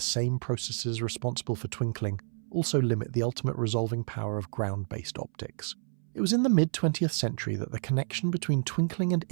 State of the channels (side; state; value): left; silent; 58 dB below the other